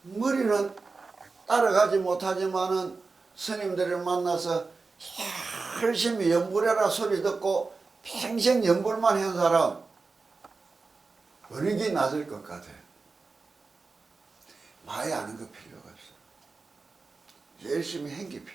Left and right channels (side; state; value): left; quieter; 4.1 dB